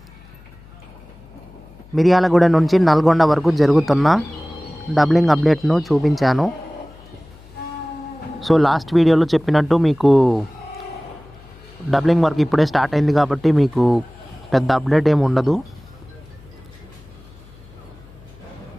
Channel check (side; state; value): left; noise; hum, 23 dB below the sound